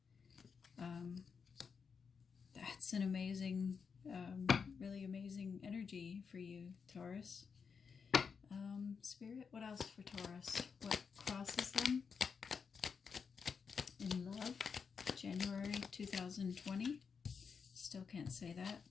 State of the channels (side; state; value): right; quieter; 5.9 dB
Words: That's an amazing, really amazing energy for you, Taurus. Spirit, what else for Taurus? What crosses them in love? January 2020. Still can't say that.